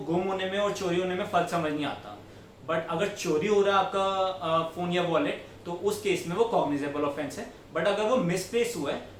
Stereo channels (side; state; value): both; identical; correlation 1.00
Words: गुम होने में और चोरी होने में फर्क समझ नहीं आता, बट अगर चोरी हो रहा है आपका फोन या वॉलेट तो उस केस में वो कॉग्निजेबल ऑफेंस है, बट अगर वो मिसप्लेस हुआ है